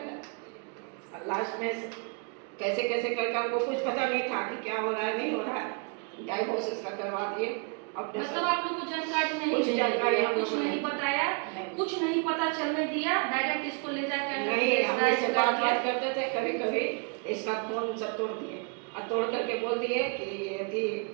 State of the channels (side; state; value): left; quieter; 36.4 dB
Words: लास्ट में कैसे कैसे करके हमको कुछ पता नहीं था कि क्या हो रहा है नहीं हो रहा है, डाइवोर्स इसका करवा दिए। मतलब आप लोग को जानकारी नहीं, कुछ जानकारी कुछ नहीं बताया, कुछ नहीं पता चलने दिया, डायरेक्ट इसको ले जाकर नहीं, हम इससे बात करते थे कभी कभी, इसका फोन सब तोड़ दिए और तोड़ करके बोल दिए कि यदि